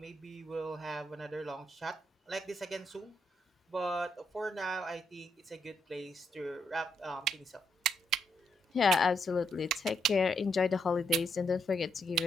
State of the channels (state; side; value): normal; both; correlation 0.78